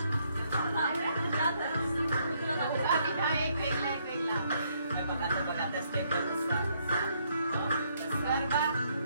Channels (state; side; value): inverted; both; correlation -0.72